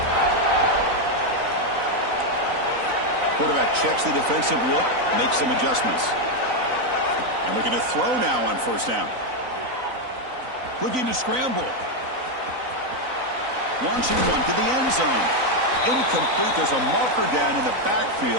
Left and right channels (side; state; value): left; late; 3.9 ms